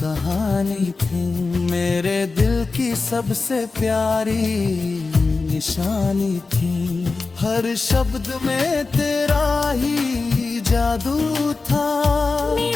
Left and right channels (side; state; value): right; quieter; 4.0 dB